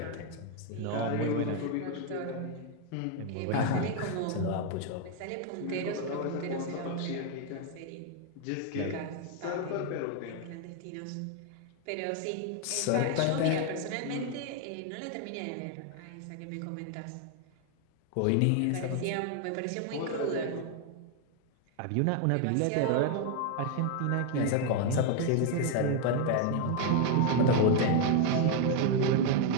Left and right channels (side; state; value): both; different; correlation 0.01